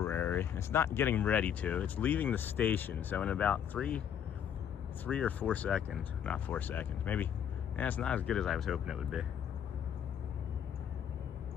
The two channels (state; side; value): quieter; right; 8.9 dB